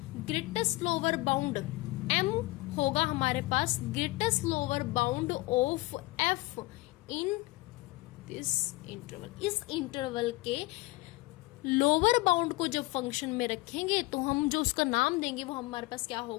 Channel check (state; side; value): quieter; right; 21.5 dB